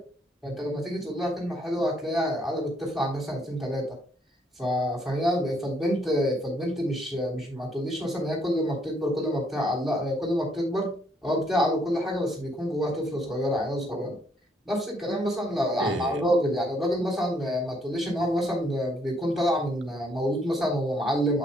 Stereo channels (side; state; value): both; normal; correlation 0.69